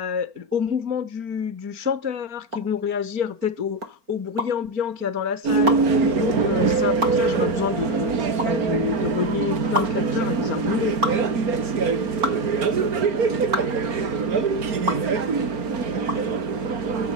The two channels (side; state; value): left; late; 4.4 ms